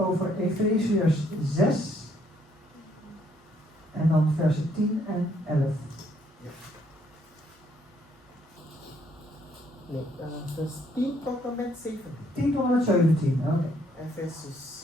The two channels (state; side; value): normal; both; correlation 0.68